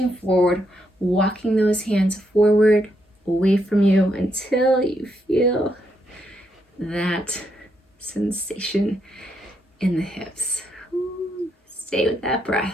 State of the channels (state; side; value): normal; both; correlation 0.78